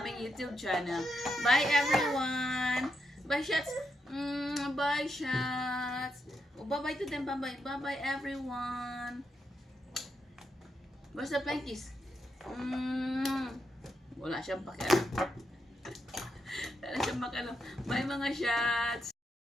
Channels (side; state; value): both; normal; correlation 0.82